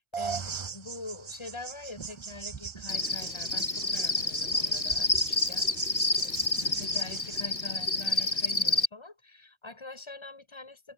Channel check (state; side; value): late; right; 1.4 ms